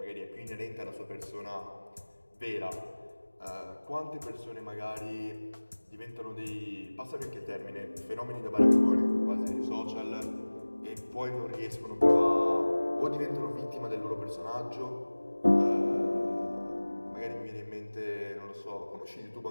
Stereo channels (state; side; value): inverted; both; correlation -1.00